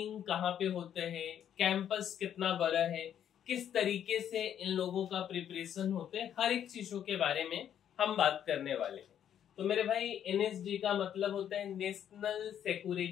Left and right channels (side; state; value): right; quieter; 9.7 dB